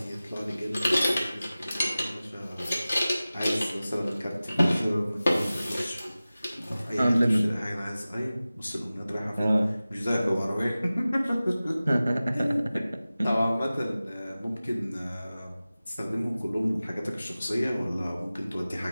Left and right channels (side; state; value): both; inverted; correlation -0.97